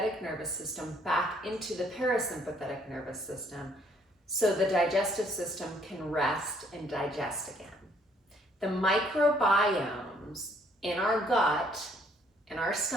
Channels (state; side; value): normal; both; correlation 0.65